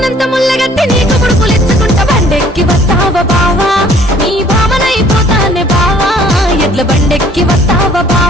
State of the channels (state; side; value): normal; both; correlation 0.57